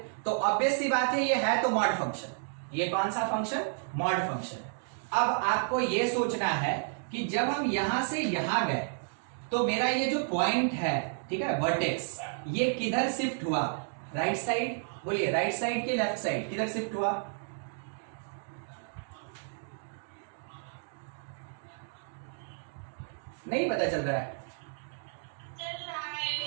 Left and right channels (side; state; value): left; silent; digital silence